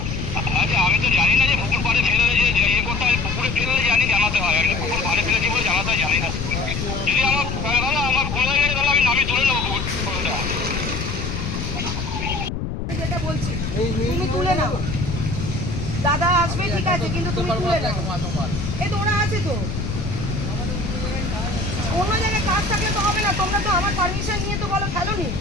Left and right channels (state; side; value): noise; left; rumble, 4 dB below the sound